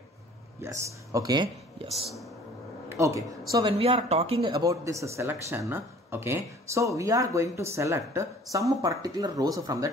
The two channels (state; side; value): normal; both; correlation 0.51